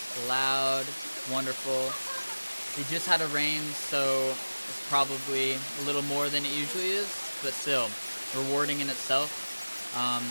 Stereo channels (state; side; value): inverted; both; correlation -1.00